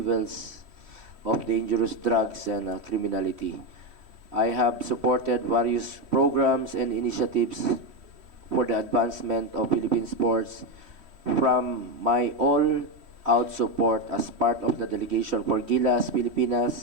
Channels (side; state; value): left; late; 3.1 ms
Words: of dangerous drugs and criminality. I have supported various programs and initiatives for the advancement of Philippine sports, from my all-out support as part of the delegation for Gilas,